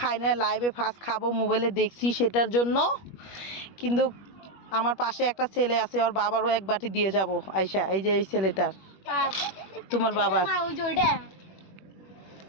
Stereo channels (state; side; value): late; right; 21 ms